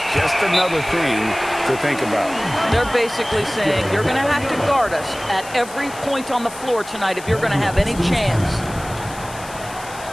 just another thing to think about. They're basically saying, you're going to have to guard us at every point on the floor tonight if you're going to have any chance.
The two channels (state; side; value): noise; left; hiss, 16 dB below the sound